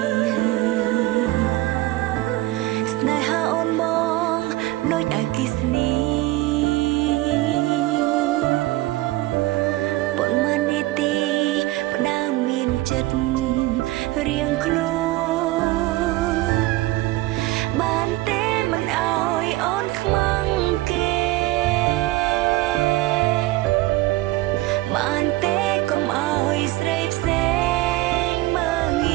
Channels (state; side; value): quieter; left; 18.2 dB